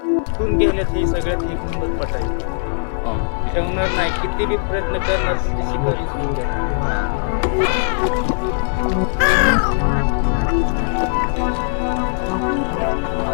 इथून गेल्यात ही सगळ्यात एक नंबर पट आहे. हो. ठेवणार नाही, किती बी प्रयत्न करणार शिकारी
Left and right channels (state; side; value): silent; right; 63 dB below the other